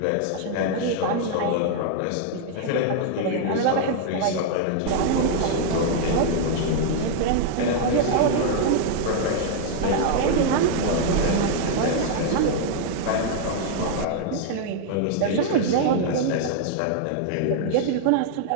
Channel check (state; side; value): different; both; correlation -0.01